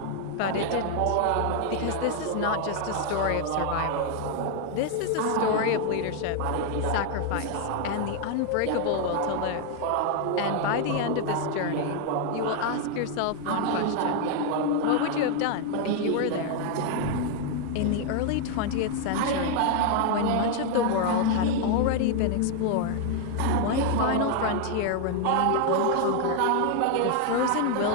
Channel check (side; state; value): both; different; correlation 0.00